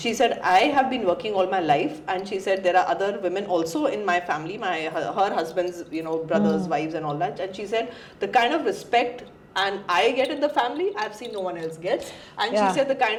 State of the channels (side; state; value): both; identical; correlation 1.00